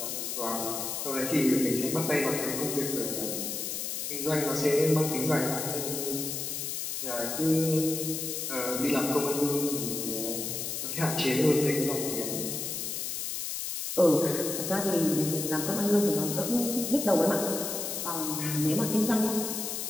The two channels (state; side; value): noise; left; hiss, 3 dB below the sound